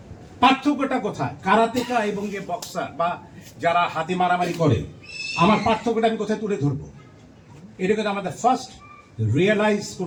পার্থক্যটা কোথায় কারাতেকা এবং যে বক্সার বা যারা হাতে মারামারি করে, আমার পার্থক্যটা আমি কোথায় তুলে ধরবো? এটাকে আমাদের ফার্স্ট রিয়েলাইজ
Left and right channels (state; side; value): identical; both; correlation 1.00